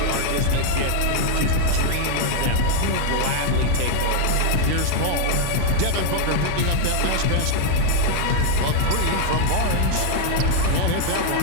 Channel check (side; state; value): both; different; correlation 0.00